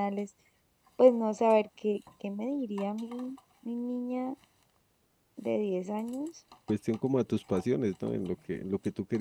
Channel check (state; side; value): identical; both; correlation 1.00